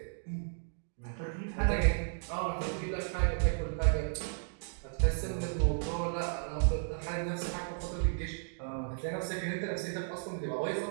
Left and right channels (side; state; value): left; silent; digital silence